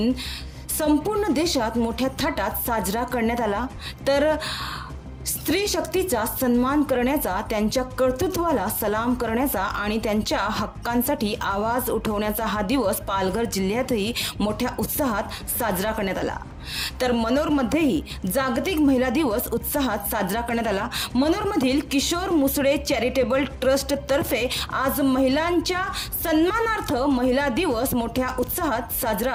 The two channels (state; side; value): identical; both; correlation 1.00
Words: संपूर्ण देशात मोठ्या थाटात साजरा करण्यात आला। तर स्त्री शक्तीचा सन्मान करण्याचा, त्यांच्या कर्तृत्वाला सलाम करण्याचा आणि त्यांच्या हक्कांसाठी आवाज उठवण्याचा हा दिवस पालघर जिल्ह्यातही मोठ्या उत्साहात साजरा करण्यात आला। तर मनोरमध्येही जागतिक महिला दिवस उत्साहात साजरा करण्यात आला। मनोरमधील किशोर मुसळे चॅरिटेबल ट्रस्ट तर्फे आज महिलांच्या सन्मानार्थ महिला दिवस मोठ्या उत्साहात